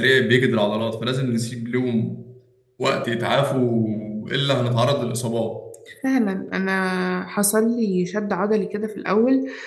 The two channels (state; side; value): identical; both; correlation 1.00